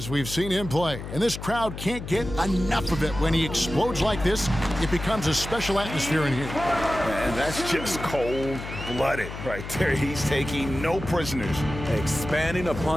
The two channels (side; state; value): left; noise; hum, 9 dB below the sound